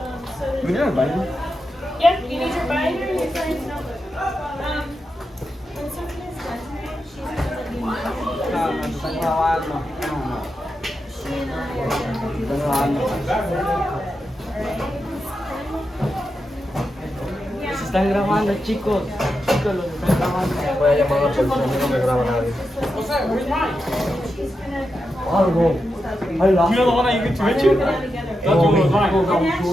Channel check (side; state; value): both; normal; correlation 0.87